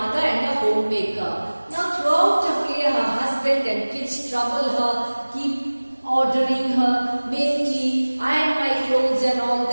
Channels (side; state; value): both; inverted; correlation -1.00